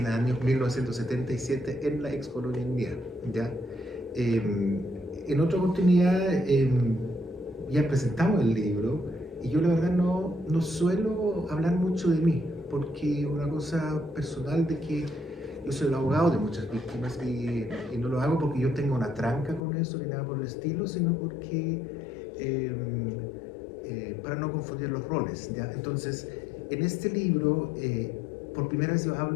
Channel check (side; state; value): right; drops out; at 19.6 s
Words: el año 1977 en la ex colonia India, ¿ya? En otra oportunidad ya presentamos el libro y yo la verdad no suelo hablar mucho de mí, porque una cosa personal de que yo soy el abogado de muchas víctimas y no lo hago porque yo tenga una tranca con eso ni nada por el estilo, sino porque para no confundir los roles, ¿ya? Entonces, en este libro, por primera vez yo